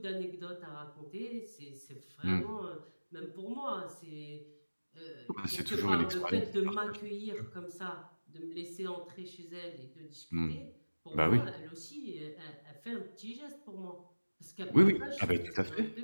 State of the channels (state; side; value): inverted; both; correlation -1.00